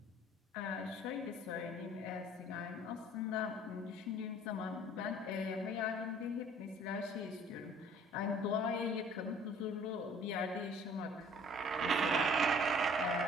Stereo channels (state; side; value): normal; both; correlation 0.53